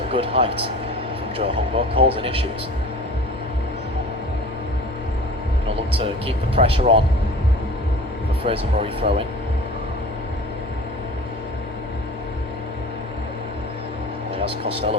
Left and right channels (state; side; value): normal; both; correlation 0.40